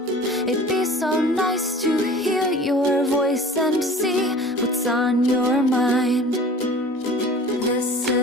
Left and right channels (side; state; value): both; normal; correlation 0.43